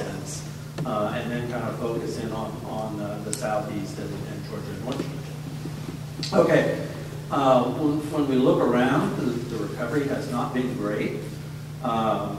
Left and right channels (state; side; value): identical; both; correlation 1.00